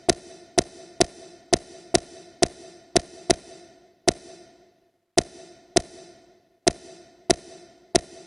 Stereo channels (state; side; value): identical; both; correlation 1.00